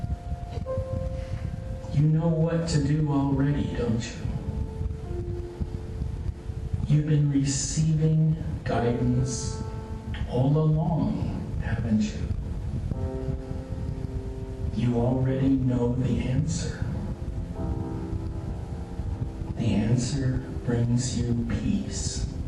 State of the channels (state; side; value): identical; both; correlation 1.00